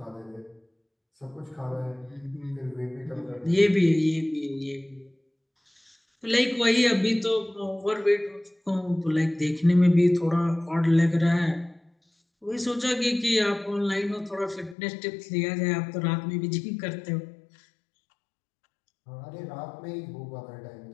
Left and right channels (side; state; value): right; drops out; at 14.8 s